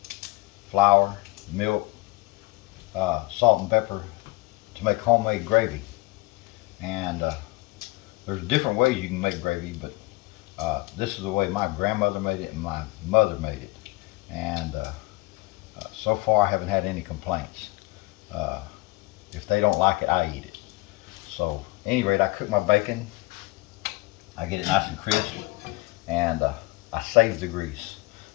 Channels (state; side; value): quieter; right; 22.3 dB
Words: flour, milk, salt and pepper to make homemade gravy. And there's different ways you can make gravy, but this is the way my grandmother made it and my mother made it. And so far I haven't had any complaints. Uh, if they don't like it, I eat it. So, at any rate, I cook my bacon. I get it nice and crisp, and I save the grease.